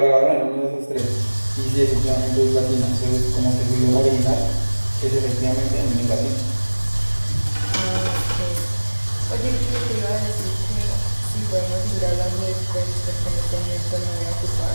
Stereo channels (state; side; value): inverted; both; correlation -1.00